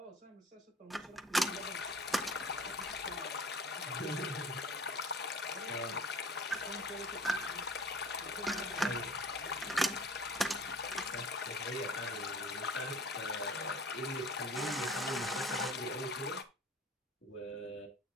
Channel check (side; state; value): both; normal; correlation 0.45